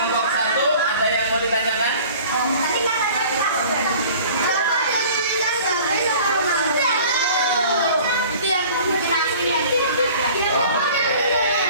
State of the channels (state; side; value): inverted; both; correlation -0.46